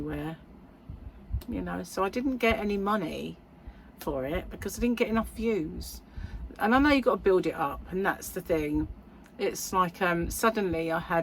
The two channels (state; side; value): identical; both; correlation 1.00